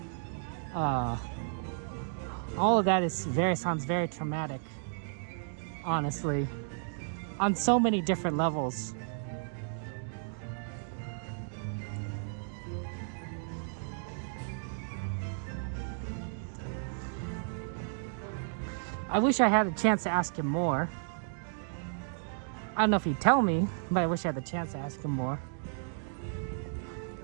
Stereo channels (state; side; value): silent; left; digital silence